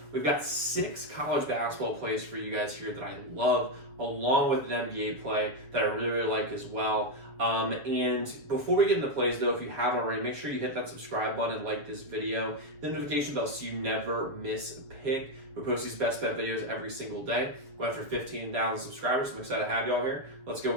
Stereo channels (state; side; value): late; left; 7.5 ms